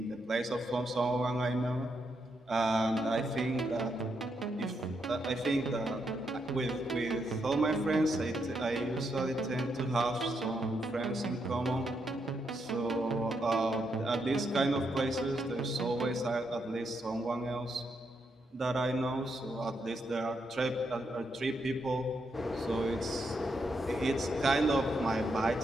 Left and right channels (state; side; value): normal; both; correlation 0.80